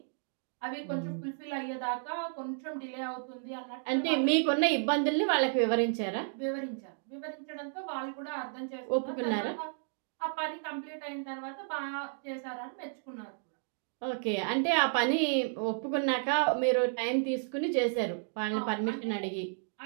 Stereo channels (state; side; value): silent; left; digital silence